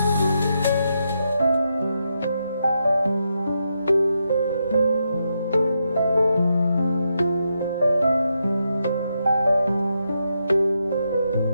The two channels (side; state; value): both; inverted; correlation -0.83